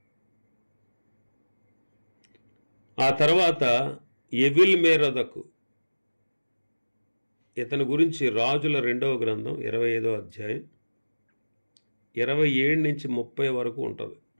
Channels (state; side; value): inverted; both; correlation -1.00